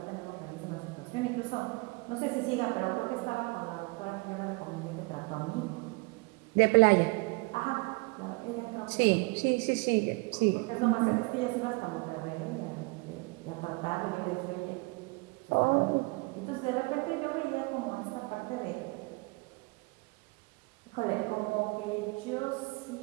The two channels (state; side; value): quieter; left; 27.8 dB